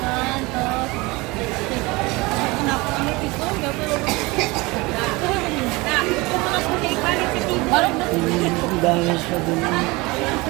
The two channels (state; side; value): quieter; left; 23.8 dB